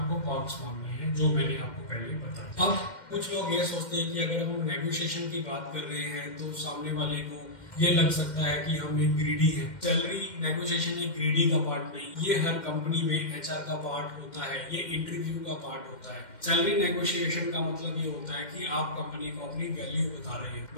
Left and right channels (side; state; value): right; late; 2.1 ms